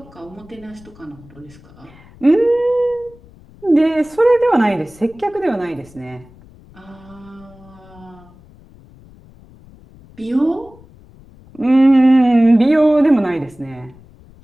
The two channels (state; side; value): noise; left; rumble, 24 dB below the sound